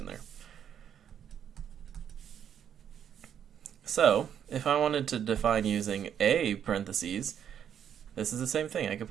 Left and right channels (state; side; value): quieter; left; 8.9 dB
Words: there. So, if I wanted to define using a parentheses, this is the same thing. I could